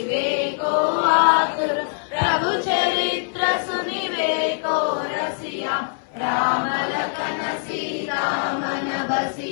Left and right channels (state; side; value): silent; right; 64 dB below the other